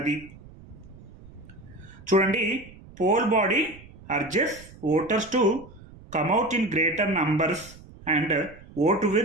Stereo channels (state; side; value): noise; right; rumble, 20 dB below the sound